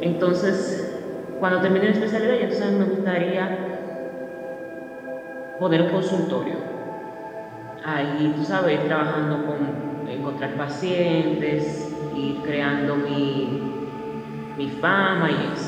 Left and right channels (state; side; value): identical; both; correlation 1.00